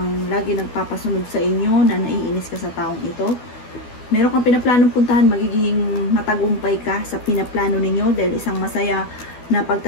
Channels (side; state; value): right; late; 12 ms